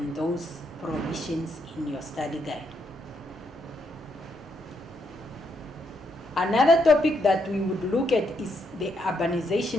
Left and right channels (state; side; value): normal; both; correlation 0.77